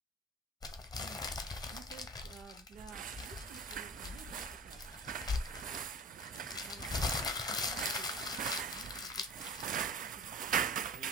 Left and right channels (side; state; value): both; normal; correlation 0.38